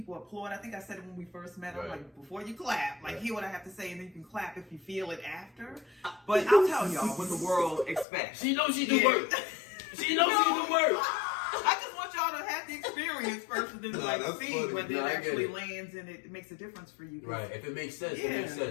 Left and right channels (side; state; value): right; drops out; at 8.1 s